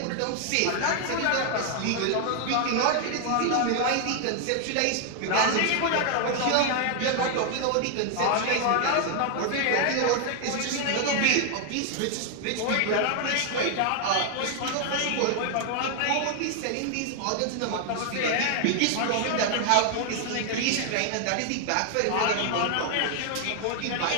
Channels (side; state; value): both; different; correlation 0.00